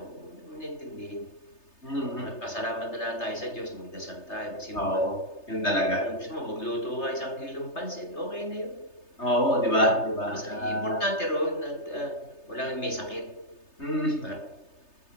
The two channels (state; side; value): late; right; 3.3 ms